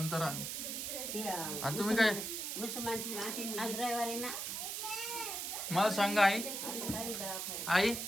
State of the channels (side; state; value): right; noise; hiss, 4 dB below the sound